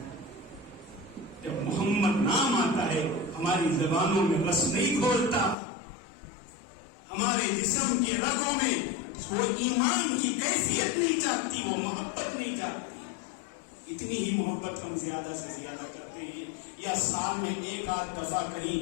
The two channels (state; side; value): drops out; right; at 5.6 s